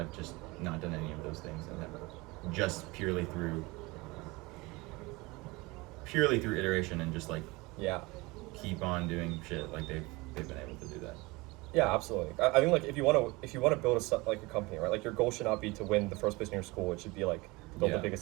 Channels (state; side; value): quieter; left; 23.6 dB